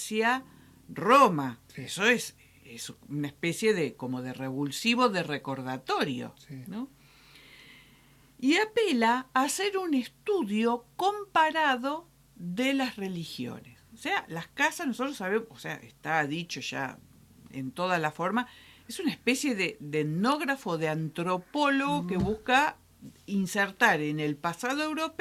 Roma. Sí. Eso es una especie de como de revulsivo de recordatorio, sí, ¿no? Y apela a hacer un estudio comparado de las religiones. O sea, las casas, nosotros sabemos, o sea, está dicho ya en toda la forma, es una especie de etnógrafo, de antropólogo que busca insertar en el pasado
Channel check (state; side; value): identical; both; correlation 1.00